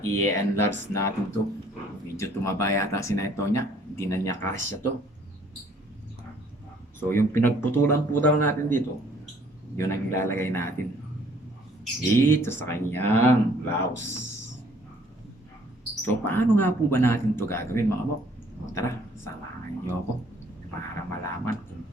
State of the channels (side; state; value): both; normal; correlation 0.60